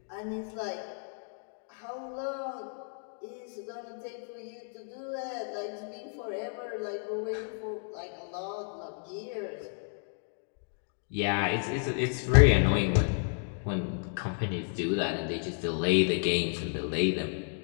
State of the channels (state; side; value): silent; right; 56 dB below the other